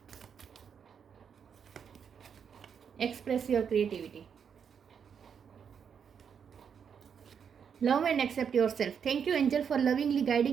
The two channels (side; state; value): left; quieter; 7.2 dB